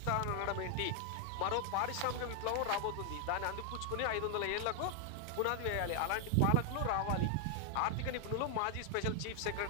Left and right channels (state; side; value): different; both; correlation 0.00